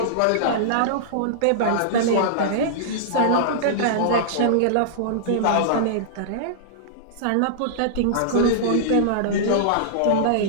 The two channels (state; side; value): different; both; correlation -0.02